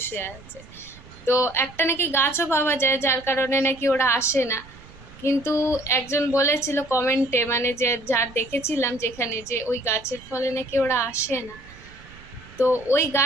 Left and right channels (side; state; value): right; noise; rumble, 21 dB below the sound